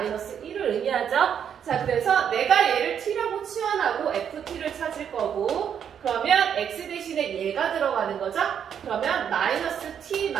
1을 의미하죠. 자, 그래서 내가 얘를 t라고 치환하고 ft를 찾을 거고, 그러면 x 대신에 얘가 들어가는 거죠. 그러면 마이너스 t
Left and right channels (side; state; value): left; quieter; 8.3 dB